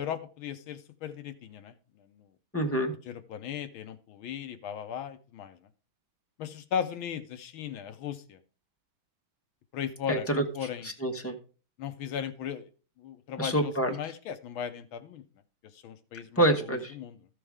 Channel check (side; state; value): both; normal; correlation -0.08